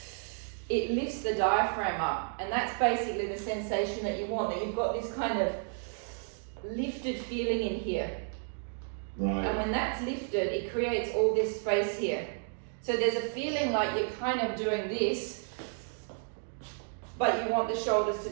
it lifts the diaphragm up, and that's basically the sensation that you want, that you've got this kind of lifted feeling in here. Right. And when that's lifted, it creates all this space here. So there's a feeling like you're kind of doing this, but you want the shoulders to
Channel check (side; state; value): left; silent; 56 dB below the other